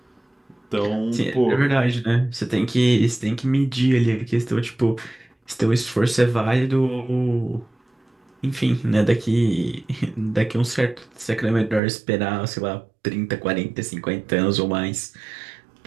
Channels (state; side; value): drops out; left; at 11.8 s